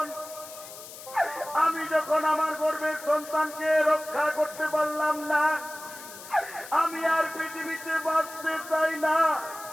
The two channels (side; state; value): left; noise; hiss, 15 dB below the sound